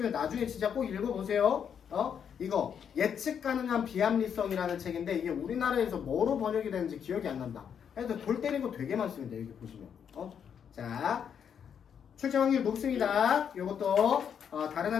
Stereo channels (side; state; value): right; quieter; 7.9 dB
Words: 나중에 진짜 꼭 읽어보세요. 이거 예측 가능한 비합리성이라는 책인데 이게 우리나라에서 뭐로 번역이 되는지 기억이 안 난다. 그래서 골 때린 거 되게 많습니다. 여기 보시면. 자, 출제 확률 높습니다. 이것도 다른